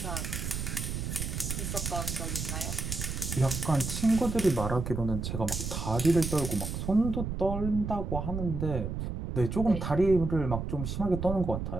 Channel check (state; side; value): noise; right; rumble, 4 dB below the sound